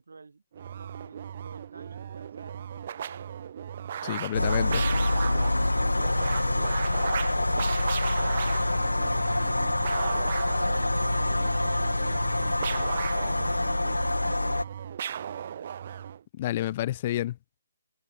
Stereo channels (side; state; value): both; inverted; correlation -0.92